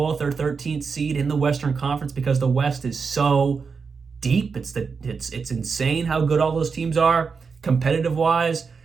or 13th seed in the Western Conference because the West is so deep. It's insane how good all those teams are competitive-wise.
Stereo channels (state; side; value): quieter; left; 5.3 dB